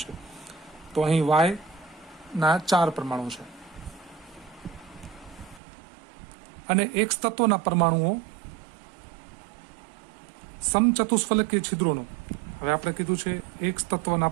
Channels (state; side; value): drops out; left; at 5.6 s